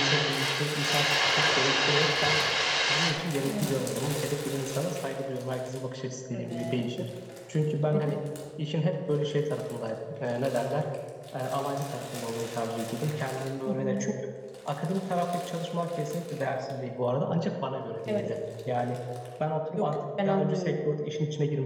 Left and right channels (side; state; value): both; identical; correlation 1.00